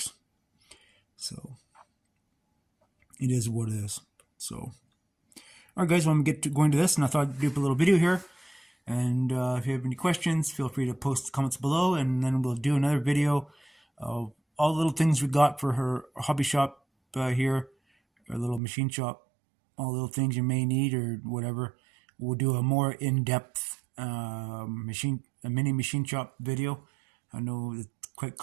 So it is what it is. So, all right, guys, when we get to going to this, and I thought I'd do a little video here. And if you have any questions, feel free to post comments below, and then we'll do another video of all the little things we got for her hobby shop here, our little machine shop, all the little things you may need or whatever. We'll do a more in-depth mini machine shop video. I know it's quite a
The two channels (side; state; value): left; drops out; at 18.6 s